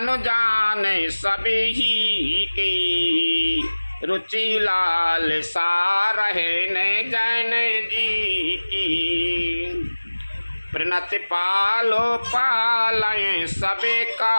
जाने सभी ही की, रुचि लाल सा रहे ने जैन जी की। प्रणति पालो पालय सबे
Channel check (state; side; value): inverted; both; correlation -1.00